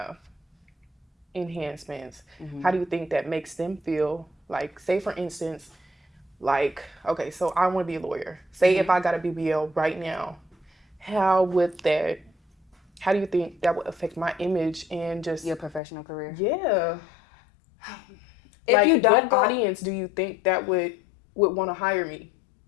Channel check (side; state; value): right; drops out; at 15.8 s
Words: enhancements, how do you think that makes them feel? Like, say for instance, like, okay, so I want to be a lawyer. Say if I got a BBL right now, how do you think that would affect my image and just your professional career? Yeah. If like, you don't what audience do you think that would want to hire me?